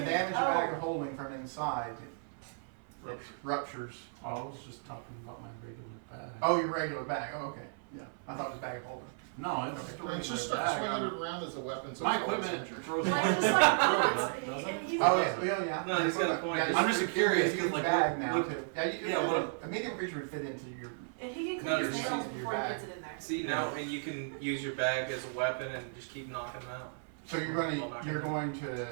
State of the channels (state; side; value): silent; left; 55 dB below the other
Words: damage a Oh. bag of holding from inside, it ruptures. I was just talking about my regular bag. Oh, your regular bag. Oh, okay. Yeah. I thought it was bag of holding. No, it's just a It's just regular start bag. swinging it around as a weapon. So My it's always equipment injured. throws Like, it just on like, the road, doesn't it? he's Oh yeah. No, he's got a point. Yeah, I'm just it's curious, a huge 'cause, like, bag what- now what- too. Yeah, what- a medium creature would fit into your. and he can No, click his you're nails seeing your before he bag. gets it in there. See now, and you can use your bag as a weapon and just keep knocking them out. So you're going